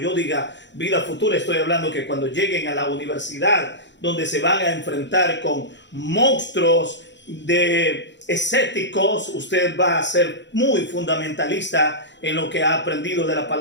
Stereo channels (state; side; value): late; right; 0.52 ms